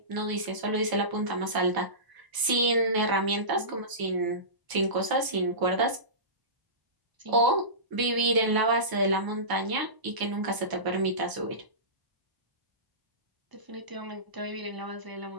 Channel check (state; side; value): late; left; 1.0 ms